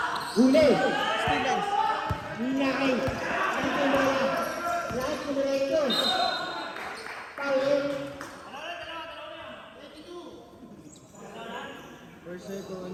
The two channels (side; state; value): both; identical; correlation 1.00